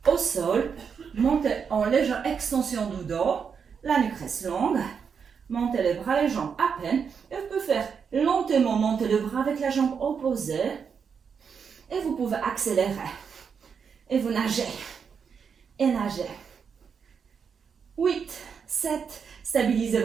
au sol. Montez en légère extension du dos. La nuque reste longue. Montez les bras, les jambes à peine. Et vous pouvez faire lentement monter le bras avec la jambe opposée. Et vous pouvez accélérer. Et vous nagez. Et nagez. 8, 7. Stabilisez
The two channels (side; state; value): left; quieter; 6.5 dB